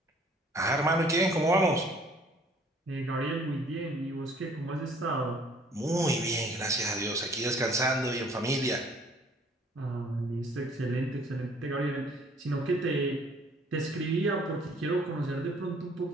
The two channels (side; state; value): both; normal; correlation 0.57